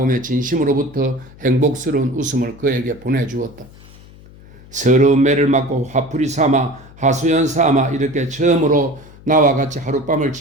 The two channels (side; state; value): left; noise; hum, 22 dB below the sound